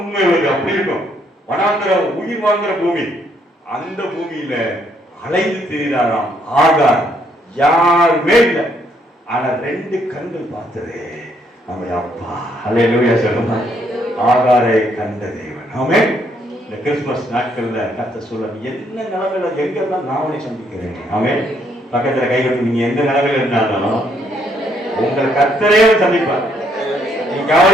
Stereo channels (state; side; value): normal; both; correlation 0.71